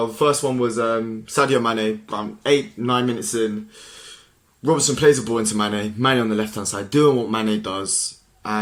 the first one was Sadio Mane, around 8-9 minutes in. Robertson plays the ball into Mane. Mane on the left-hand side, doing what Mane does,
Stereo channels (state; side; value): identical; both; correlation 1.00